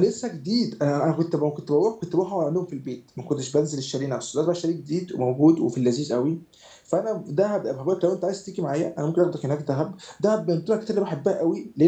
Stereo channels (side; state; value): both; identical; correlation 1.00